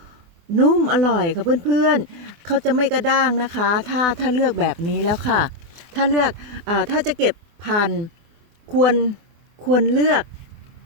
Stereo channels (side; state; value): left; late; 24 ms